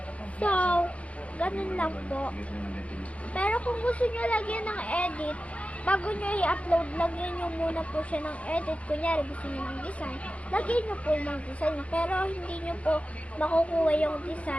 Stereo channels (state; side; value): late; right; 0.064 ms